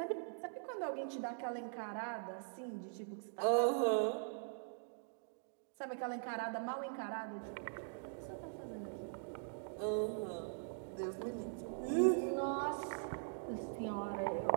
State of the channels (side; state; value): left; silent; digital silence